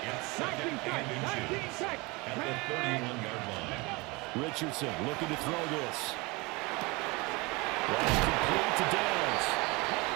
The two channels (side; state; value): left; quieter; 25.4 dB